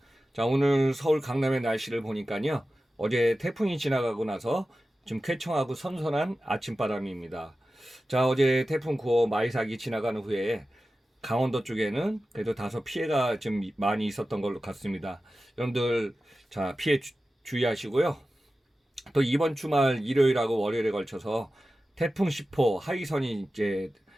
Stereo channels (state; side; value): normal; both; correlation 0.94